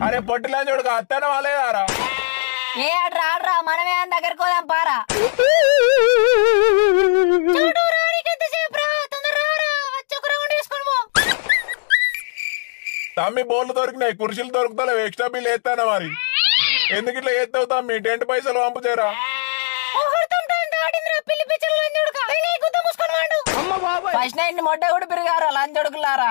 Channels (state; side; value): silent; right; digital silence